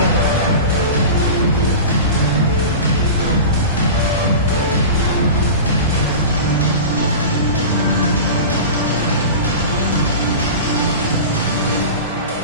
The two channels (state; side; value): inverted; both; correlation -0.31